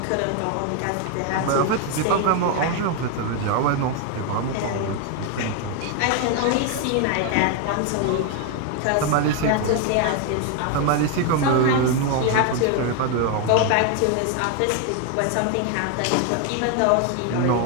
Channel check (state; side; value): different; both; correlation 0.01